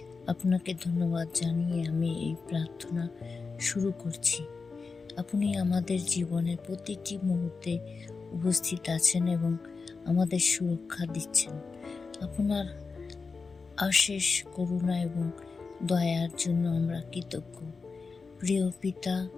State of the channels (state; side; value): quieter; right; 4.6 dB